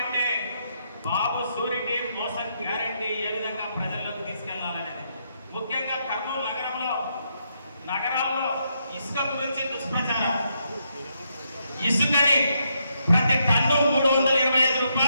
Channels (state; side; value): inverted; both; correlation -0.79